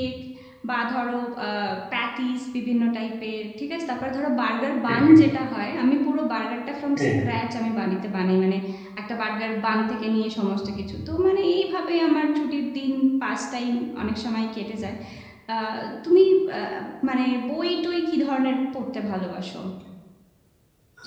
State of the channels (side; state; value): both; identical; correlation 1.00